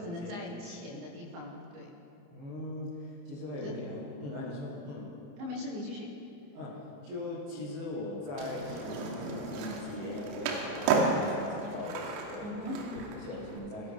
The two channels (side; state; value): left; late; 30 ms